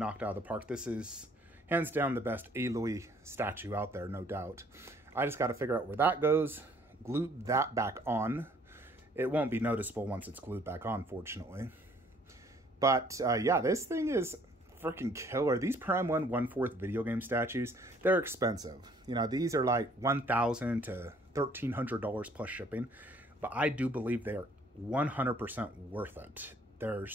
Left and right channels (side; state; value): both; normal; correlation 0.60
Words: out of the park. This is hands down the best Aloy statue out there, no doubt. I just got to figure out where that goes. Glue that back on. It won't be noticeable once it's glued back on, fortunately. But yeah, this thing is freaking killer. These Prime 1 1/4 video game statues, they're expensive. You know, these are like $1,000 to $1,300 plus shipping. But I do believe they are 100% worth it. They're